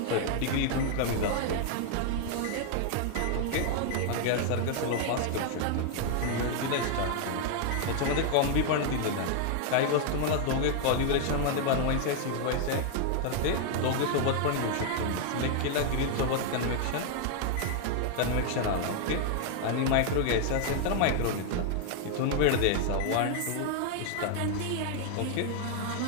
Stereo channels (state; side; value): different; both; correlation 0.00